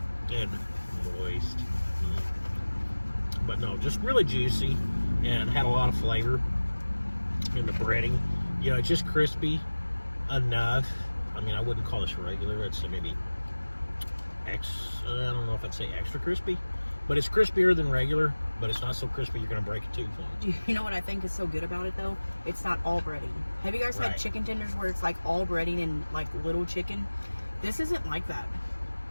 and moist. But no, just really juicy and had a lot of flavor in the breading. You know, it's just crispy enough. I mean, I wouldn't call this regular. I'd say maybe I don't know if I'd say extra crispy, but it's crispier than regular, but it's not so crispy you're going to break a tooth on it. You know what I think is so good about it, though? It's not all breading. Have you guys had chicken tenders where it's like all breading and like little chicken? This isn't like that.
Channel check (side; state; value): both; inverted; correlation -1.00